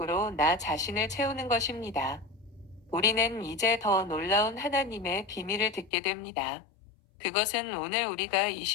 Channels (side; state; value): right; drops out; at 5.9 s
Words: 나 자신을 채우는 것입니다. 우리는 이제 더 놀라운 하나님의 비밀을 듣게 됩니다. 그것은 오늘 우리가 이